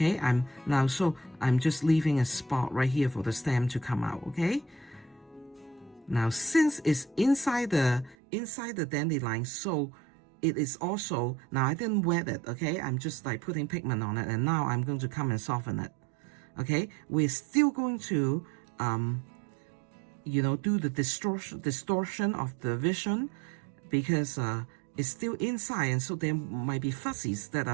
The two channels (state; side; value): drops out; left; at 8.2 s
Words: I'm just leaving a spot right here for the stem to come out. Okay, now since it's inside the dandelion, so it is also, now I didn't wet it. Okay, I'm just like putting pigment on it, and now I'm going to come and soften it. Okay, we're still going to you know, do the distortion of the vision, because it's still inside, and so there might be fuzzies that